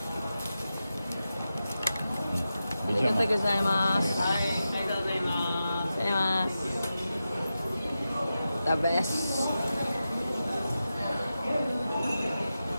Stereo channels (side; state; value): both; inverted; correlation -0.91